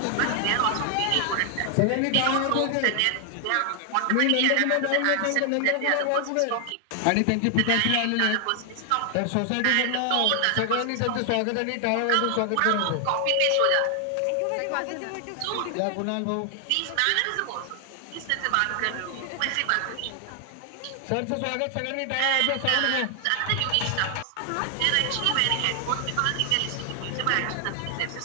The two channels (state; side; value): different; both; correlation 0.00